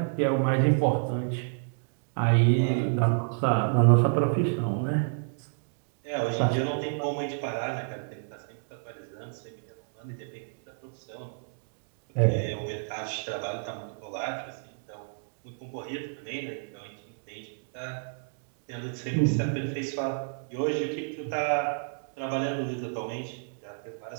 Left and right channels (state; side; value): silent; left; digital silence